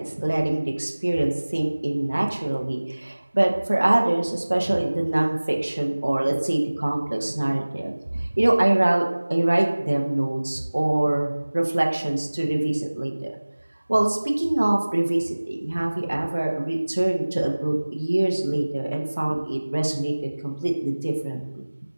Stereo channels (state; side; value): inverted; both; correlation -1.00